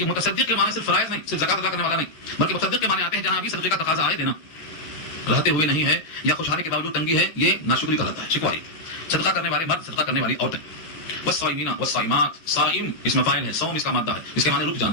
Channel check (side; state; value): right; late; 12 ms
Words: متصدق کے معنی صرف فرائض نہیں، صرف زکات ادا کرنے والا نہیں، بلکہ متصدق کے معنی آتے ہیں جہاں بھی صدقے کا تقاضا آئے دینا، رہتے ہوئے نہیں ہے یا خوشحالی کے باوجود تنگی ہے، یہ ناشکری کا رہتا ہے، شکواری. صدقہ کرنے والے مرد، صدقہ کرنے والی عورتیں. والصائمین والصائمات، صائم اس میں فاعل ہے، صوم اس کا مادہ ہے، اس کے معنی رک